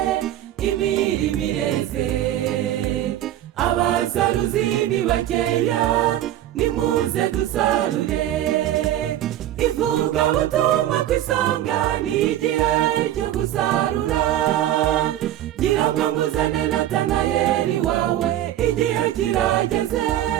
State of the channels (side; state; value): left; quieter; 12.7 dB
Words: imirimo ireze. Abasaruzi ni bakeya, nimuze dusarure. Ivugabutumwa ku isonga, ni igihe cyo gusarura. Gira bwangu uzane Natanayeli wawe, igihe kirageze.